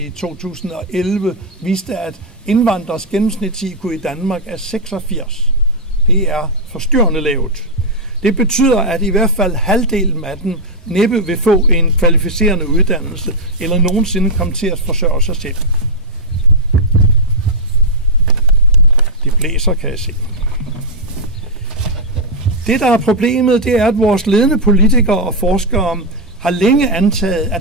2011, viste, at indvandrers gennemsnits-IQ i Danmark er 86. Det er forstyrrende lavt. Det betyder, at i hvert fald halvdelen af dem næppe vil få en kvalificerende uddannelse, eller nogensinde komme til at forsørge sig selv. Det blæser, kan jeg se. Det, der er problemet, det er, at vores ledende politikere og forskere har længe antaget,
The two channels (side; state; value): both; normal; correlation -0.05